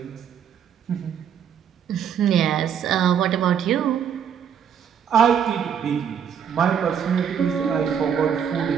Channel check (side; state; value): left; quieter; 8.2 dB